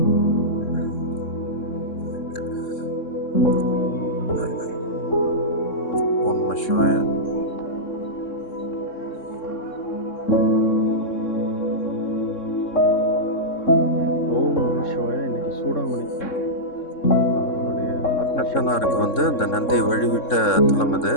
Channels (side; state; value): right; late; 3.6 ms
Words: ஓம் நம சிவாய. இன்னைக்கு சூடாமணி அவருடைய ஆத்மசனாருக்கு அந்த நந்தியை வழிவிட்ட தலம் இது.